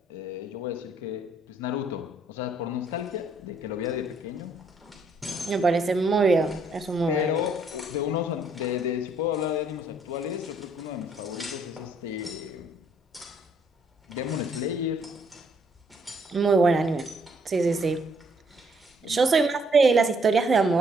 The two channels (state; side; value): normal; both; correlation 0.68